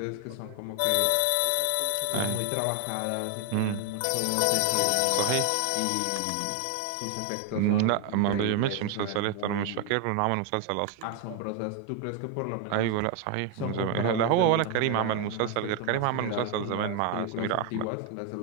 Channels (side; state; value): both; different; correlation 0.01